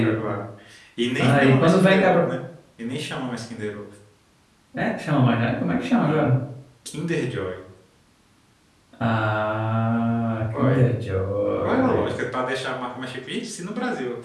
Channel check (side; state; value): both; identical; correlation 1.00